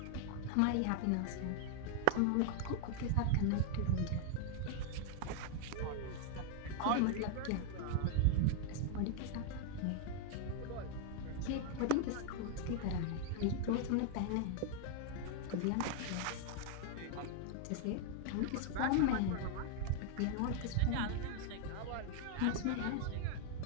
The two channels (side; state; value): both; different; correlation 0.00